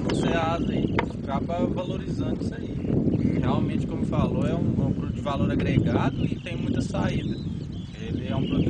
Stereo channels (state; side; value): identical; both; correlation 1.00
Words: Ceasa aí. Acaba valorizando isso aí. Realmente, como falou, é um produto de valor agregado e tem muita saída. Ele é um